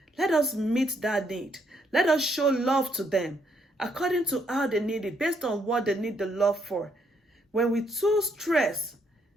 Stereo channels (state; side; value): normal; both; correlation 0.73